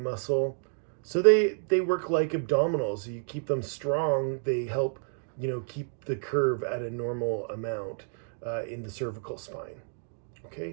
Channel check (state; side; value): silent; left; digital silence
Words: So they work like abdominals. You keep them strong, they help, keep the curve at a normal amount in the cervical spine.